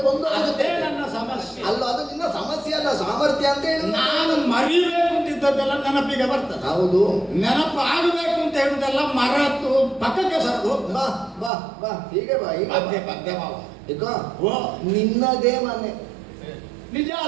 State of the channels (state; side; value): drops out; left; at 11.5 s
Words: ಬಂದು ಅದೇ ನನ್ನ ಸಮಸ್ಯೆ ಅಲ್ಲ. ಅದು ನಿನ್ನ ಸಮಸ್ಯೆ ಅಲ್ಲ, ಸಾಮರ್ಥ್ಯ ಅಂತ ಹೇಳಿ. ನಾನು ಮರಿಬೇಕು ಅಂತಿದ್ದದ್ದೆಲ್ಲ ನೆನಪಿಗೆ ಬರ್ತದೆ. ಹೌದು, ನೆನಪು ಆಗಬೇಕು ಅಂತ ಹೇಳುದೆಲ್ಲ ಮರೆತು ಪಕ್ಕಕ್ಕೆ ಸರದು. ಬಾ ಬಾ ಬಾ, ಹೀಗೆ ಬಾ, ಹೀಗೆ ಪದ್ಯ ಪದ್ಯ ಮಾವ. ಓ, ನಿನ್ನದೇ ಮನೆ